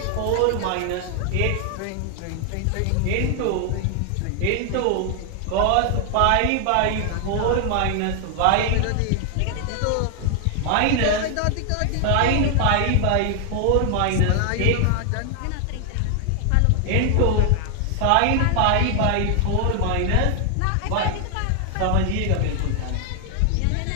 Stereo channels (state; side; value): different; both; correlation 0.00